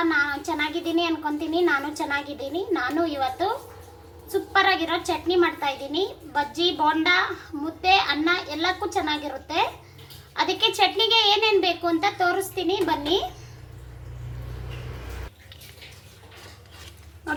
ನಾನು ಚೆನ್ನಾಗಿದ್ದೀನಿ ಅನ್ಕೊತೀನಿ. ನಾನು ಚೆನ್ನಾಗಿದ್ದೀನಿ. ನಾನು ಇವತ್ತು ಸೂಪರ್ ಆಗಿರೋ ಚಟ್ನಿ ಮಾಡ್ತಾ ಇದ್ದೀನಿ. ಬಜ್ಜಿ, ಬೋಂಡ, ಮುದ್ದೆ, ಅನ್ನ ಎಲ್ಲಕ್ಕೂ ಚೆನ್ನಾಗಿರುತ್ತೆ. ಅದಕ್ಕೆ ಚಟ್ನಿಗೆ ಏನೇನು ಬೇಕು ಅಂತ ತೋರಿಸ್ತೀನಿ ಬನ್ನಿ.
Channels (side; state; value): both; identical; correlation 1.00